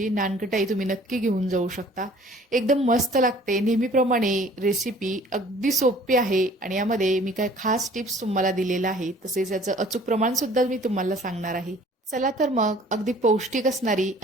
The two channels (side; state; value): both; normal; correlation 0.52